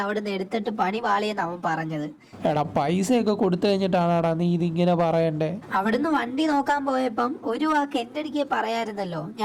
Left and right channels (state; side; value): identical; both; correlation 1.00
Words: അവിടെ നിന്ന് എടുത്തിട്ട് പണി പാളിയെന്ന് അവൻ പറഞ്ഞത്. എടാ, പൈസയൊക്കെ കൊടുത്തു കഴിഞ്ഞിട്ടാണാടാ നീ ഇതിങ്ങനെ പറയണ്ടേ? അവിടുന്ന് വണ്ടി നോക്കാൻ പോയപ്പം ഒരു വാക്ക് എന്റെ അടുക്ക് പറയായിരുന്നല്ലോ.